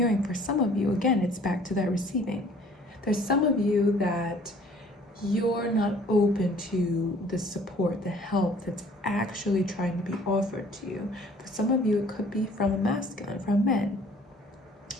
for some of you, again, it's back to that receiving. There's some of you that you're not open to the support, the help that's actually trying to be offered to you. For some of you, it could be from a masculine, from men.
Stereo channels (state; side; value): normal; both; correlation 0.54